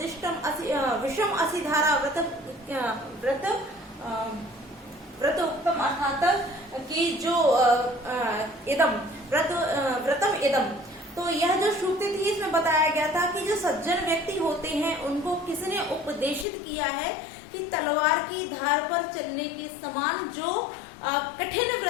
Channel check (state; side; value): drops out; right; at 16.4 s